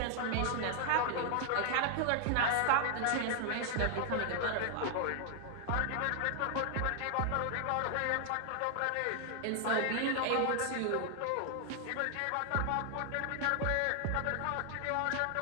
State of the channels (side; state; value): both; different; correlation 0.00